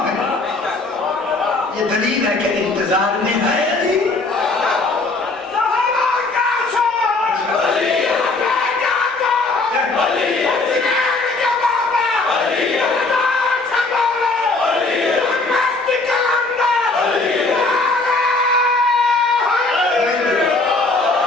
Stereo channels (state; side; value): quieter; right; 3.4 dB